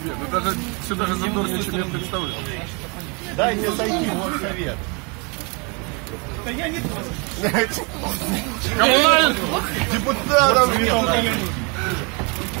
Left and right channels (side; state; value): left; quieter; 31.1 dB